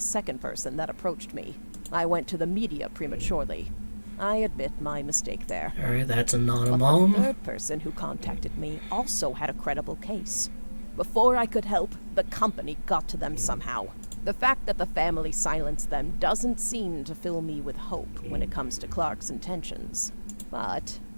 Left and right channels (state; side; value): inverted; both; correlation -1.00